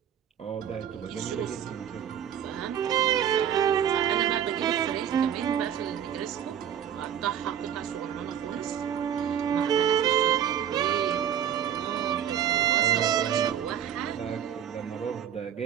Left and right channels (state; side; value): quieter; left; 9.4 dB